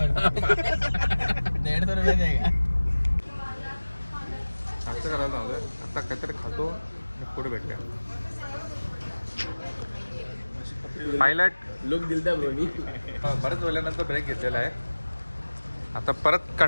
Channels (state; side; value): inverted; both; correlation -1.00